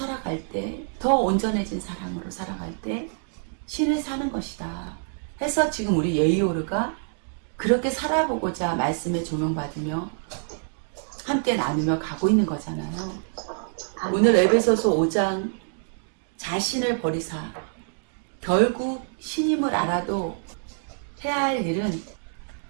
때 더 온전해진 사랑으로 살아갈 때 신을 사는 것이다. 해서 지금 우리 예이오르가 그렇게 살아보고자 말씀에 조명받으며 함께 나누며 가고 있는 거잖아요. 오늘 에베소서 5장 자신을 버리사 결국 신임을 알아도 해야 할 일은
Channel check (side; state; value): left; silent; digital silence